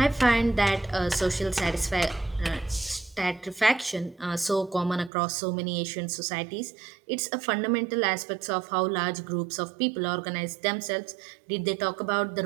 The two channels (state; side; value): drops out; left; at 5.1 s